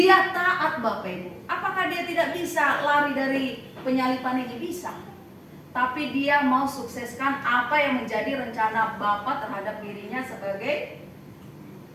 taat Bapak Ibu. Apakah dia tidak bisa lari dari penyaliban ini? Bisa. Tapi dia mau sukseskan apa yang menjadi rencana Bapa terhadap dirinya sebagai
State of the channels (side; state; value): both; identical; correlation 1.00